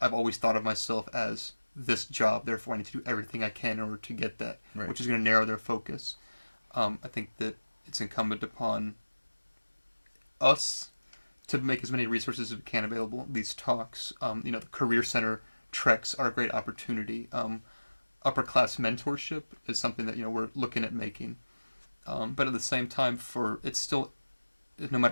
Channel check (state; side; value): inverted; both; correlation -1.00